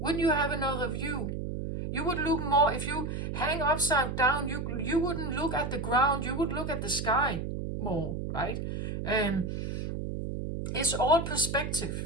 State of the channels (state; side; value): noise; right; hum, 4 dB below the sound